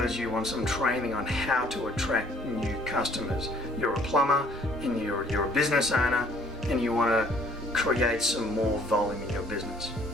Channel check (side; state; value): both; normal; correlation 0.59